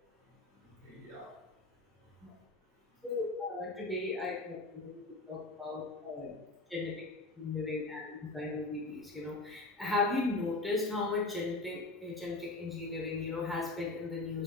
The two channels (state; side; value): quieter; right; 3.1 dB